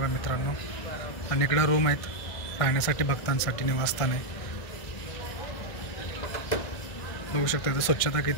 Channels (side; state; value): right; late; 1.6 ms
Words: मित्रांनो. आणि इकडं रूम आहेत राहण्यासाठी, भक्तांसाठी निवासस्थान आहे. बघू शकता इथं स्वच्छता